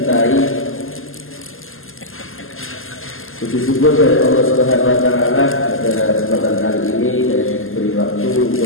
Puji syukur dari Allah Subhanahu wa Ta'ala pada kesempatan kali ini saya diberi waktu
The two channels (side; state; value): right; late; 0.60 ms